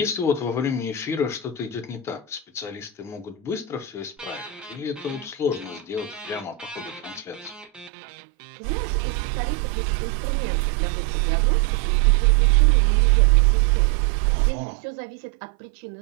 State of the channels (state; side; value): drops out; left; at 7.9 s